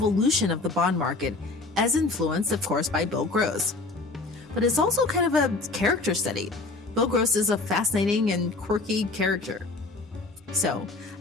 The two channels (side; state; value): right; quieter; 3.4 dB